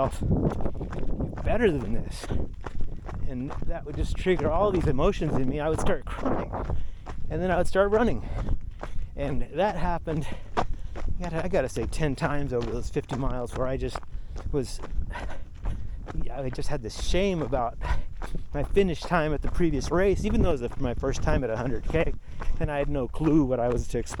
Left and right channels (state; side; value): identical; both; correlation 1.00